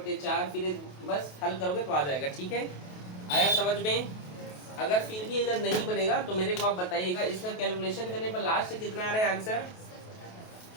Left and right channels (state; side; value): late; right; 28 ms